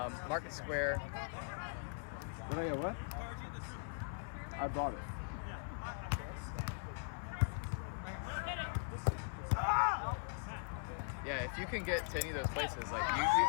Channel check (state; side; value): silent; right; 51 dB below the other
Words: Square. Did I get what? I bought it. Yeah, if you can get to any of those places, like you